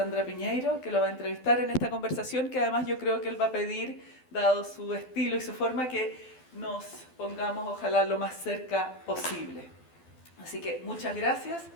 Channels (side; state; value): right; late; 12 ms